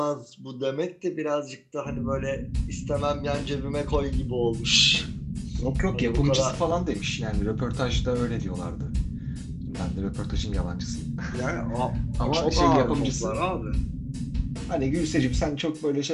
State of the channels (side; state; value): both; identical; correlation 1.00